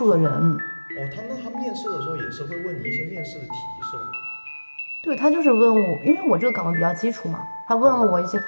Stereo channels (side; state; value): both; inverted; correlation -1.00